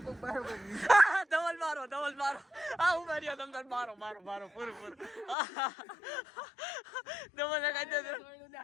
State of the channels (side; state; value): right; drops out; at 5.4 s